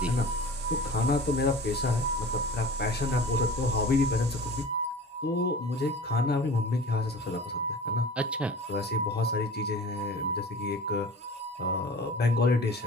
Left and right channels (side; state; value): both; normal; correlation 0.39